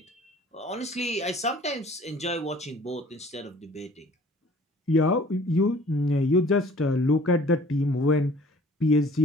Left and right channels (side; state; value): both; normal; correlation 0.51